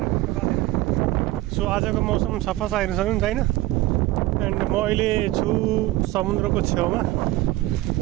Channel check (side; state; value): left; quieter; 17.5 dB